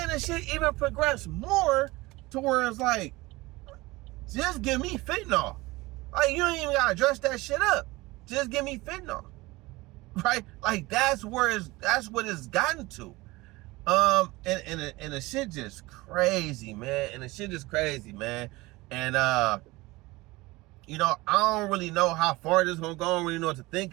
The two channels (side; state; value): left; quieter; 21.2 dB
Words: the shit even progressed more to where it's like, just give me fentanyl. Like, you ain't even gotta dress that shit up. Just give me fentanyl, right? Like, that's what it's gotten to. And the shit just crazy, man. And you know, I don't really know how far this is gonna go. I don't really know what to think